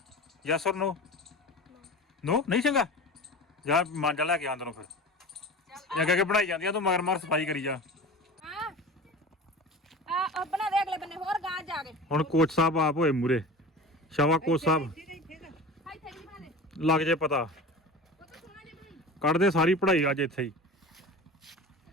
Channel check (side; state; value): both; normal; correlation 0.34